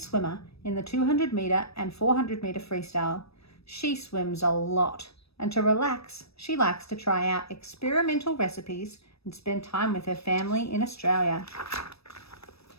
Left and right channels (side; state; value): right; late; 0.78 ms